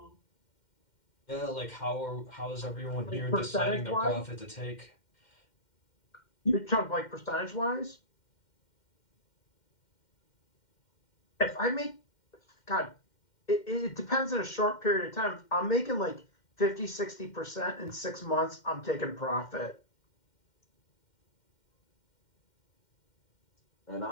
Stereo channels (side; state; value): right; late; 2.1 ms